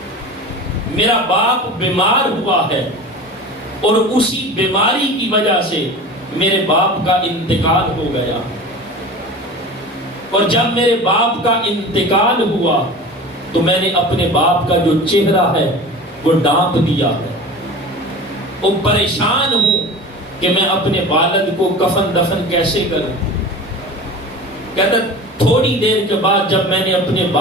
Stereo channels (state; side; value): normal; both; correlation 0.35